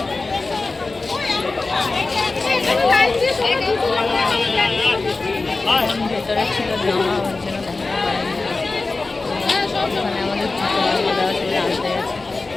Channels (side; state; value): right; quieter; 3.6 dB